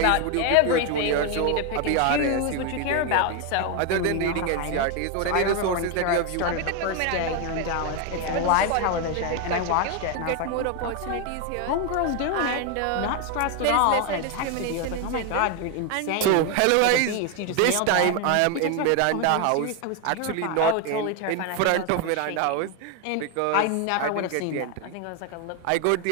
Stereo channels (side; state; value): both; different; correlation 0.01